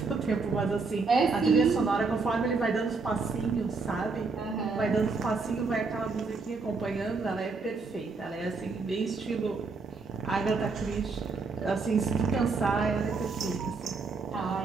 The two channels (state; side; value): quieter; left; 4.3 dB